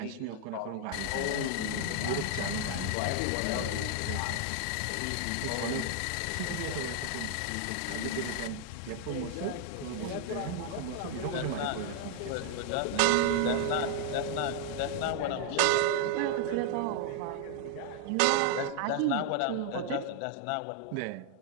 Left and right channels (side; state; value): both; different; correlation -0.01